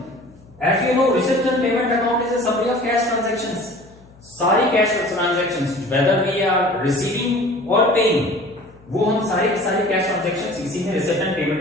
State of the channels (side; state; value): left; noise; hum, 26 dB below the sound